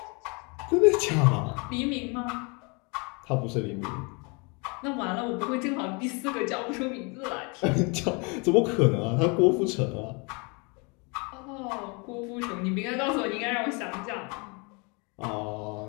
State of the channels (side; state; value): right; quieter; 31.1 dB